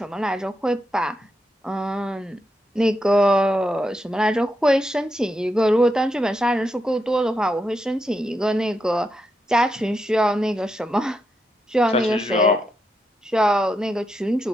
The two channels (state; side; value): normal; both; correlation 0.84